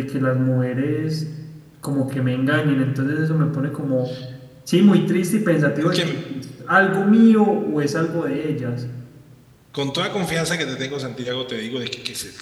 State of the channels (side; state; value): both; identical; correlation 1.00